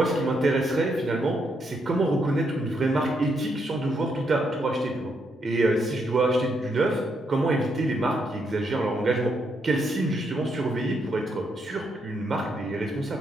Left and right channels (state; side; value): normal; both; correlation 0.77